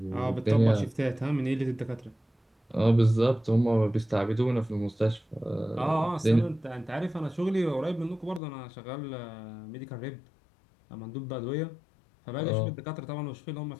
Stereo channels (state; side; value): drops out; right; at 8.4 s